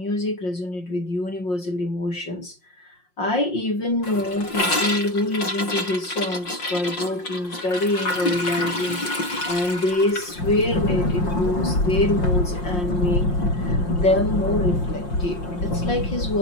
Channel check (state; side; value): late; right; 5.6 ms